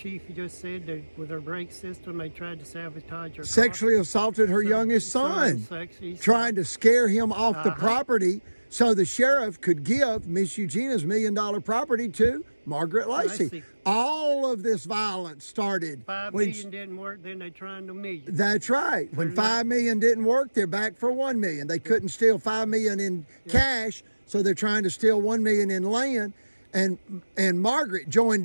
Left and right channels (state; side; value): inverted; both; correlation -1.00